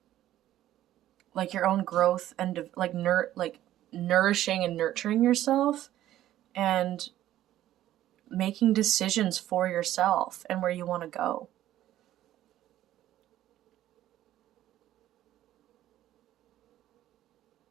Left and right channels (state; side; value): quieter; left; 13.2 dB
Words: like your own growth and like nourishing and nurturing yourself and making decisions for yourself and where you want to go.